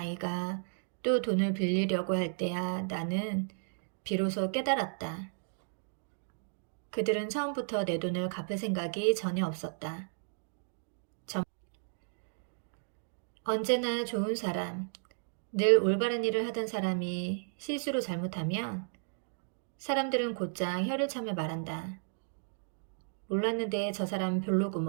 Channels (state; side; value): silent; left; digital silence